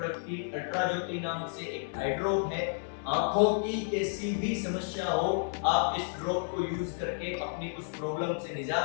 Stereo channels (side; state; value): right; silent; digital silence